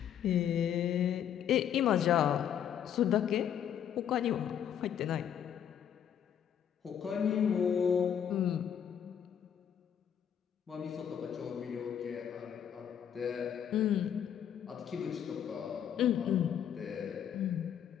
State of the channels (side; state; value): right; quieter; 9.1 dB